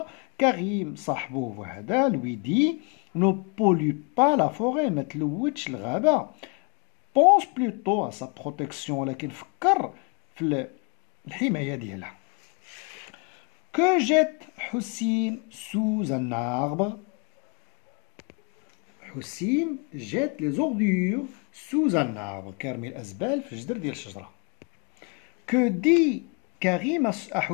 كريم صاحبه وهذا lui dit: ne pollue pas la forêt، ما تلوثش الغابة. pense plutôt à sa protection، ولكن فكر في الحماية ديالها. Que jette Houssine sous un arbre? Houssine jette les ordures sous un arbre. كيرمي الأزبال في الجدر ديال الشجرة. Que dit Karim à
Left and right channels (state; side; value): quieter; right; 34.1 dB